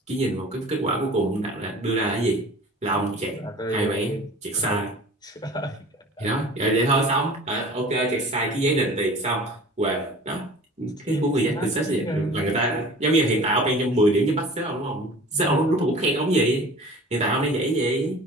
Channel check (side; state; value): both; normal; correlation 0.43